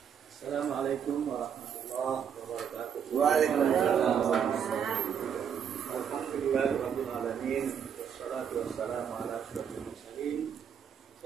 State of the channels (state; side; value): quieter; left; 7.9 dB